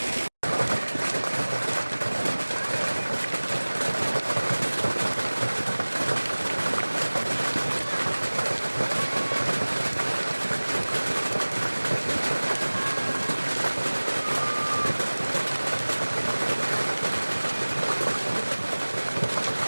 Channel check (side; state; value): both; inverted; correlation -1.00